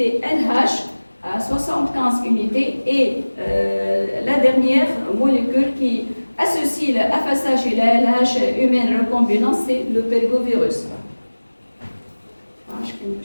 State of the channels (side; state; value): both; inverted; correlation -1.00